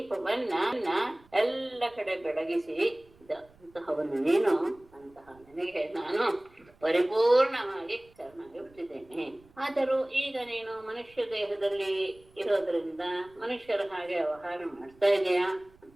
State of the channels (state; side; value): noise; right; rumble, 28 dB below the sound